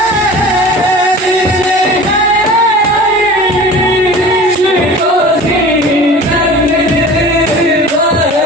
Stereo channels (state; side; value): normal; both; correlation 0.40